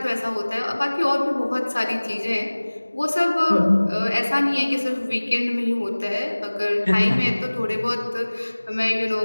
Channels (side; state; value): both; inverted; correlation -1.00